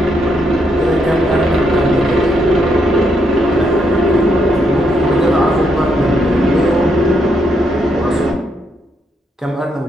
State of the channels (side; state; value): both; normal; correlation 0.77